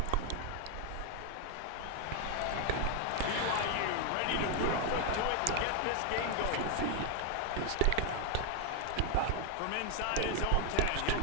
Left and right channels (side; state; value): both; different; correlation 0.01